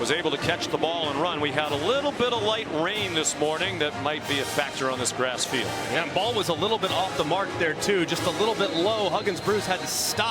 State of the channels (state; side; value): identical; both; correlation 1.00